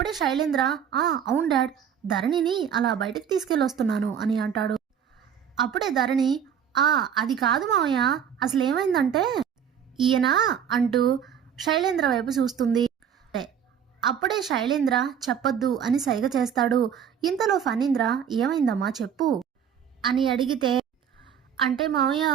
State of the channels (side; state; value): left; quieter; 8.3 dB